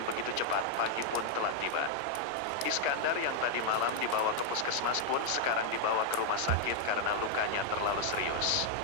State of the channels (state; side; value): different; both; correlation 0.00